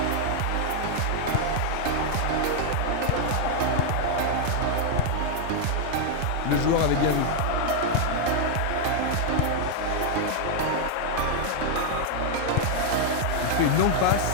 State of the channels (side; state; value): both; different; correlation 0.00